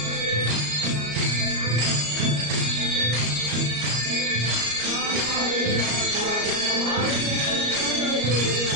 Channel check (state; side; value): late; left; 34 ms